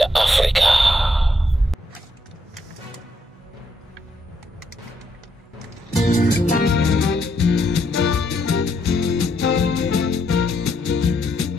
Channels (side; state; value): both; normal; correlation 0.76